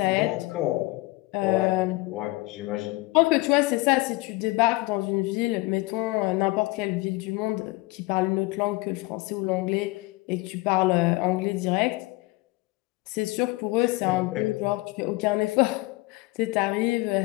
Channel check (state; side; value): quieter; right; 22.0 dB